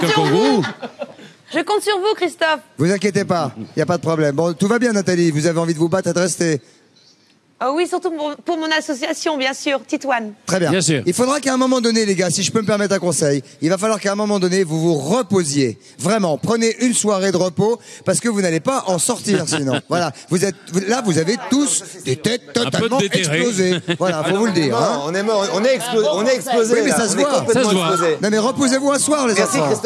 un sur kangourou. Je compte sur vous, Christophe. Vous inquiétez pas, il n'y a pas de problème. Bon, tout va bien, Nathalie. Vous avez envie de vous battre et de rester. Oh oui, surtout pour mon association, bien sûr, Titouane. Très bien. Bien sûr. Il faudra qu'à un moment donné, les gars, si je peux me permettre un conseil, il va falloir qu'à un moment donné, vous vous reposiez. Vraiment, prenez une soirée de repos parce que vous n'allez pas en sortir sinon. Voilà, vous avez tous des têtes totalement explosées. Voilà, faut vous le dire. Non, on est mort, on est explosé. Oui, mais ça se voit. Ça se voit. Non, mais reposez-vous un soir, les enfants. Merci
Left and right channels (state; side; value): identical; both; correlation 1.00